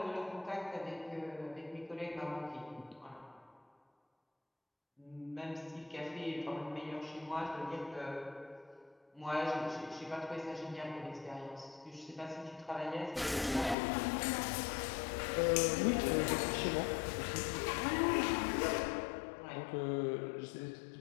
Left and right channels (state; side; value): drops out; right; at 13.8 s